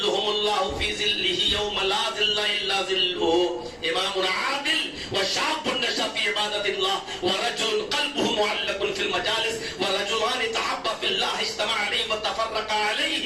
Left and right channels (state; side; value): identical; both; correlation 1.00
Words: اللہ فی ظلہ یوم لا ظل الا ظلہ، امام عادل وشاب نشأ فی عبادۃ اللہ ورجل قلبہ معلق فی المجالس ورجلان تحابا فی اللہ اجتمعا علیہ وتفرقا